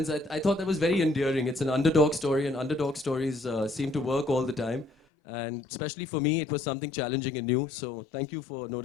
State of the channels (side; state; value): right; drops out; at 5.0 s